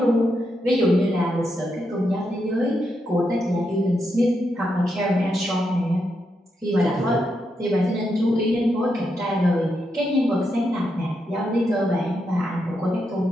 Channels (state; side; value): normal; both; correlation 0.83